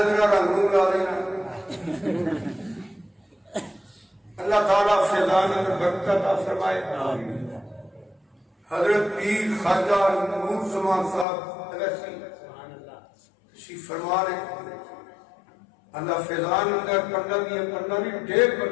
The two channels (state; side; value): drops out; right; at 11.2 s